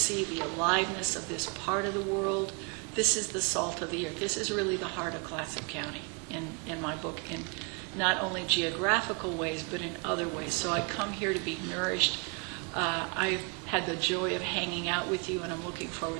the aliveness of this part of the world, this is the salt of the earth. This is really the heart of Clatsop County in my book, in not only geographical ways, but in other ways. So I come here to be nourished. I've had the joy of hanging out with you, and I'm looking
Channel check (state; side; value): quieter; left; 33.8 dB